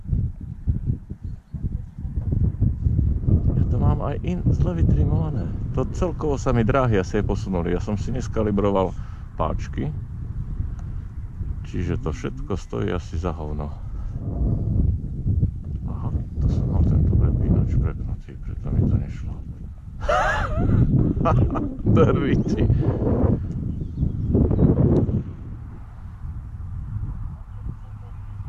Ja to mám aj zle vytrimované. To celkovo sa mi dráhy asi aj posunuli. Ja som si neskalibroval páčky. Čiže to všetko stojí asi za hovno. Aha, to som mal tento prepínač prepnutý, preto mi to nešlo. Drviti.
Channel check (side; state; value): both; identical; correlation 1.00